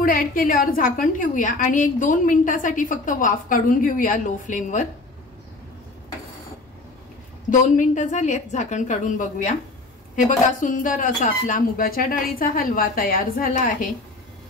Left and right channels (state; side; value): quieter; right; 3.0 dB